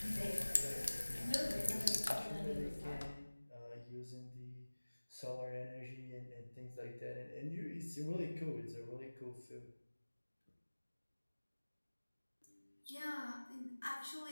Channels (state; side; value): inverted; both; correlation -1.00